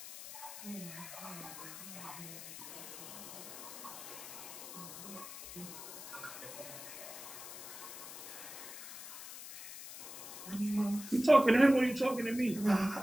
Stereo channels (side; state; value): left; noise; hiss, 11 dB below the sound